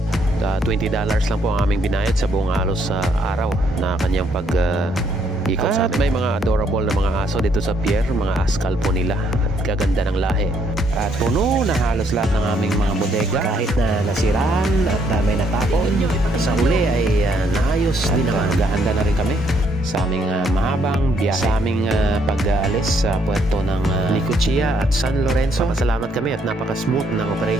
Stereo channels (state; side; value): normal; both; correlation 0.70